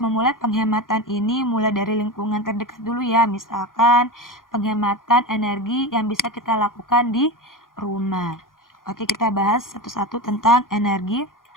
penghematan ini mulai dari lingkungan terdekat dulu ya. Misalkan penghematan energi yang bisa kita lakukan di rumah. Oke, kita bahas satu-satu tentang energi.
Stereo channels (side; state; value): right; late; 0.90 ms